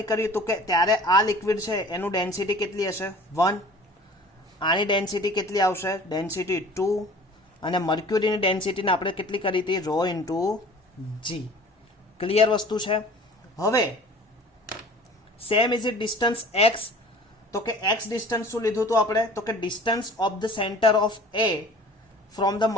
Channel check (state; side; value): normal; both; correlation 0.46